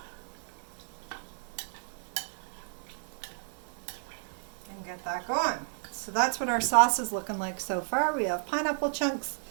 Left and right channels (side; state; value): left; silent; digital silence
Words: And get that going. So that's what our sauce is looking like so far. We have pineapple chunks,